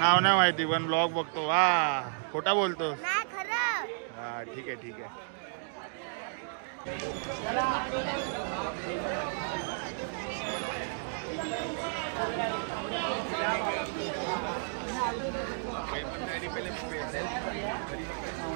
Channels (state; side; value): silent; left; digital silence